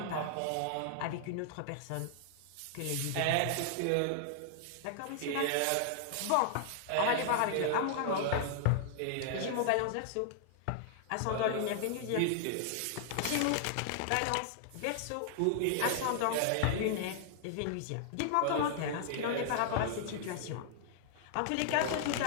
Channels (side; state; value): both; different; correlation -0.01